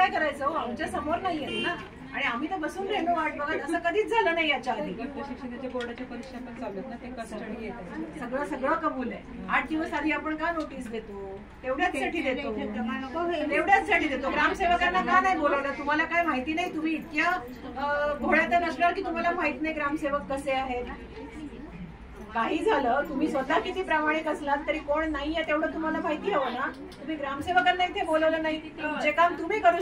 करायचं. आमच्या समोर नाहीये ना, आणि आम्ही तर बसून राहिलो वाट बघत. असं कधीच झालं नाही याच्या आधी. प्रशिक्षणाच्या बोर्डाच्या परीक्षा पण चालू आहेत ना, ते कस्टडी येतात. सगळं कबूल आहे. 8 दिवस आधी आपण का नोटीस देतो? तेवढ्याचसाठी देतो. ग्रामसेवकांना का नाही बोलवलं? तुम्हाला काय माहिती नाही? तुम्ही इतक्या घोड्यात नसणार की तुम्हाला माहित नाही ग्रामसेवक कसे आहेत? काही झालं, तुम्ही स्वतः किती प्रामाणिक असलात तरी कोण नाहीये तेवढं तुम्हाला माहिती हवं ना. तुम्ही ग्रामसेवकांना इथे बोलवलं नाही. जे काम तुम्ही करू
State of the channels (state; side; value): identical; both; correlation 1.00